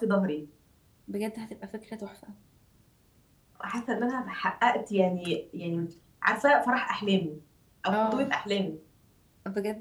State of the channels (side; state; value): both; identical; correlation 1.00